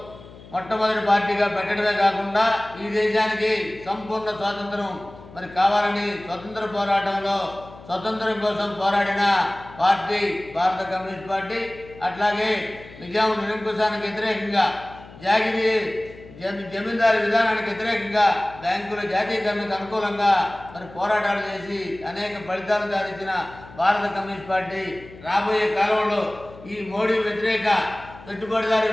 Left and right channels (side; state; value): left; noise; hum, 19 dB below the sound